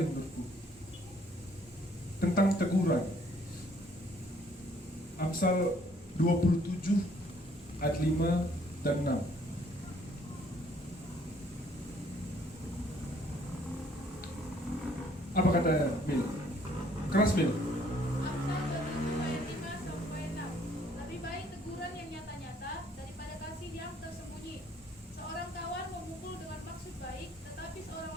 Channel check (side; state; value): both; normal; correlation 0.63